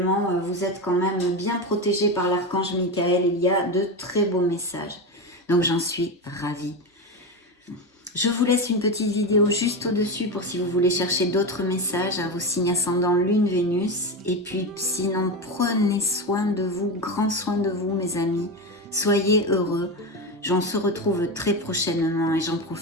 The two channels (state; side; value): normal; both; correlation 0.18